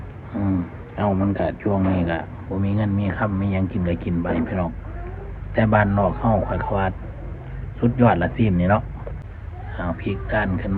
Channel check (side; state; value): both; identical; correlation 1.00